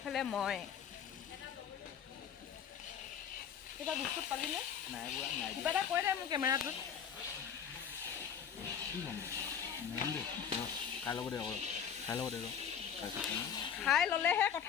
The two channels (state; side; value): quieter; right; 8.0 dB